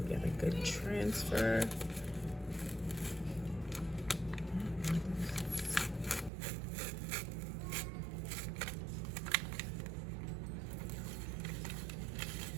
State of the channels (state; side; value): drops out; left; at 6.3 s